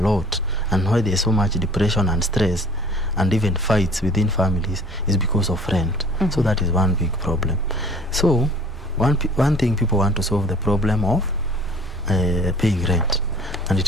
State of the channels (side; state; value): both; normal; correlation 0.50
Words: and why there's so much depression and stress and even fights within families is because of rent. So that is one big problem. So one thing, people want to solve the problem of paying rent, and it